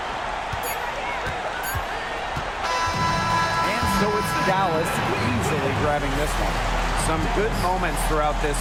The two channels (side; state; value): both; identical; correlation 1.00